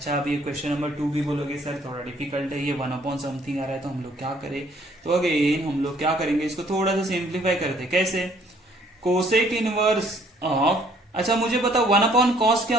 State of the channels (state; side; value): normal; both; correlation 0.62